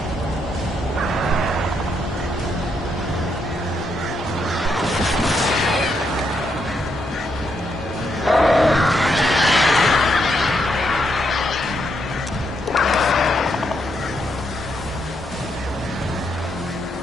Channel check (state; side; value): normal; both; correlation 0.79